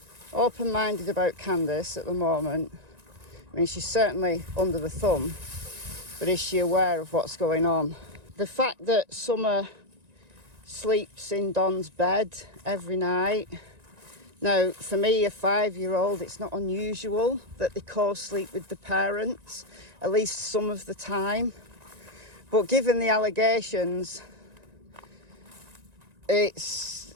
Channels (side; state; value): left; late; 1.9 ms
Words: open-minded about Candus at the moment. I mean, she's certainly under the thumb, but is she aware of what's going on? The fact that Summer sleeps in Don's bed every night. Now, for me, a 5-year-old, it's not unusual that they co-sleep with the parents, at least some of the time. But given the allegations, it's